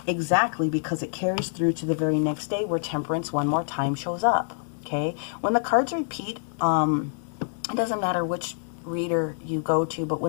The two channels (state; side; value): silent; right; digital silence